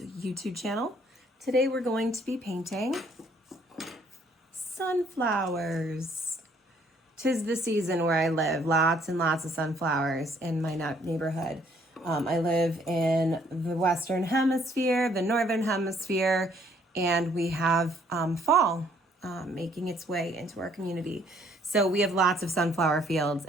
YouTube channel. Today we're going to be painting sunflowers. 'Tis the season where I live. Lots and lots of sunflowers in my neighborhood. I live in the Western Hemisphere, the Northern Hemisphere, and we have fall making its way into our community. So we have lots of sunflower fields,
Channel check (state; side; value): normal; both; correlation 0.64